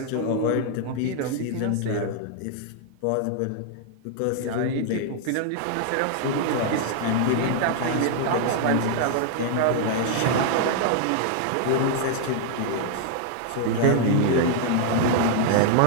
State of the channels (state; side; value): different; both; correlation 0.00